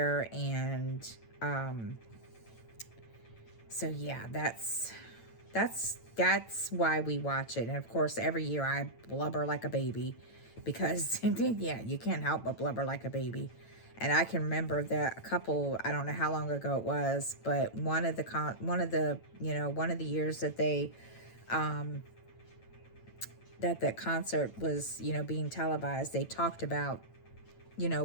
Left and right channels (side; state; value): right; late; 9.0 ms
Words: And so yeah, that's why we watch it. And of course, every year I blubber like a baby, because yeah, you can't help but blubber like a baby. And I can remember that I don't know how long ago it was, but one of the years that they, that concert was, being televised, they talked about,